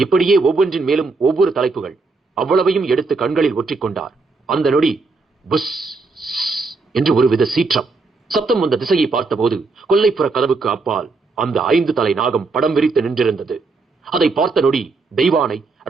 ஒவ்வொன்றின் மேலும் ஒவ்வொரு தலைப்புகள். அவ்வளவையும் எடுத்து கண்களில் ஒற்றிக்கொண்டார். அந்த நொடி புஸ் என்று ஒருவித சீற்றம். சப்தம் வந்த திசையை பார்த்தபோது கொல்லைப்புற கதவுக்கு அப்பால் அந்த 5 தலை நாகம் படம் விரித்து நின்றிருந்தது. அதை பார்த்த நொடி தெய்வானை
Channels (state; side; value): quieter; left; 3.9 dB